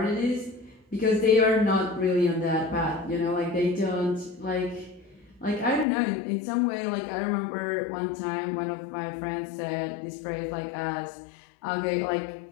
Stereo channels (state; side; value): drops out; right; at 5.9 s